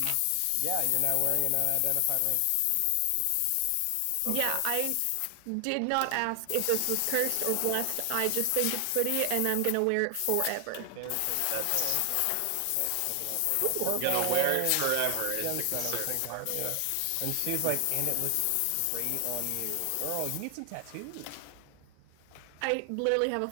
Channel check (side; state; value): both; different; correlation 0.00